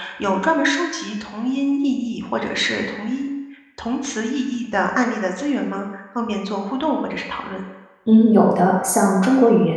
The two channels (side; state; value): both; identical; correlation 1.00